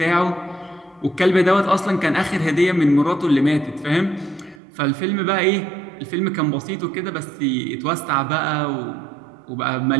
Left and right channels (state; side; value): drops out; left; at 4.6 s